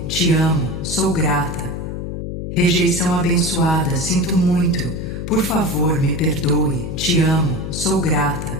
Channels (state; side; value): noise; left; hum, 6 dB below the sound